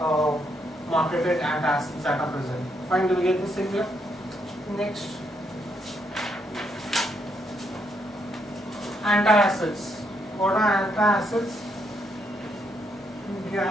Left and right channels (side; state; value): both; normal; correlation 0.76